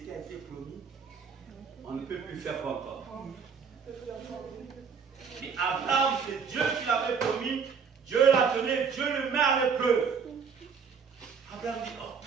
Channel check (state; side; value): quieter; left; 6.1 dB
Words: a été promis, on ne peut plus faire encore. Mais Abraham, c'est Dieu qui l'avait promis, Dieu l'a donné, Dieu le met à l'épreuve. Abraham dit, oh,